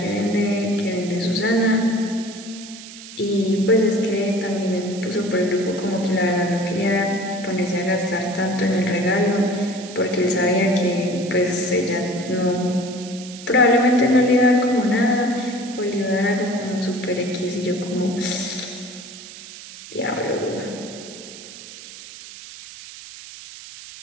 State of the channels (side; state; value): right; noise; hiss, 15 dB below the sound